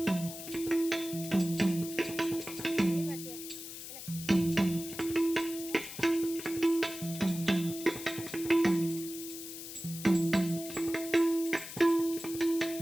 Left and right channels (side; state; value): left; noise; hiss, 11 dB below the sound